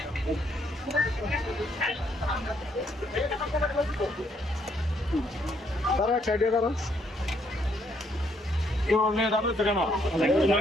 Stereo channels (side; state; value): both; normal; correlation 0.71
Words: দাঁড়া, সাইডে দাঁড়া। কেন